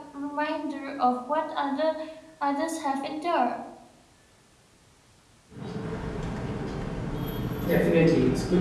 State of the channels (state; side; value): identical; both; correlation 1.00